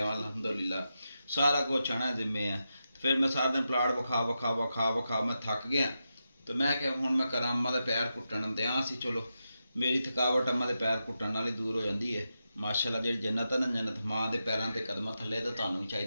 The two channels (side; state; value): both; inverted; correlation -0.88